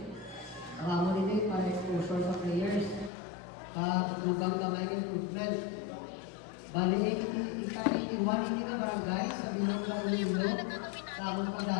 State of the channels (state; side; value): drops out; right; at 3.1 s